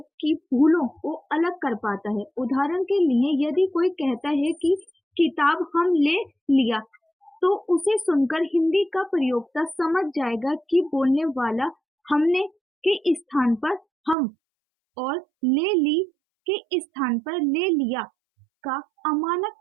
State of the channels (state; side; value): drops out; left; at 14.2 s